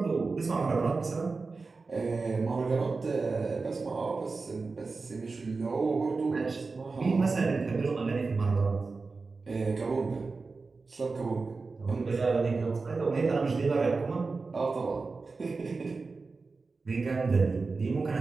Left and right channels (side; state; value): left; quieter; 4.1 dB